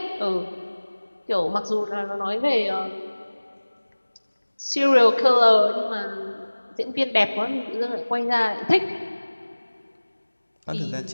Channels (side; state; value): both; inverted; correlation -1.00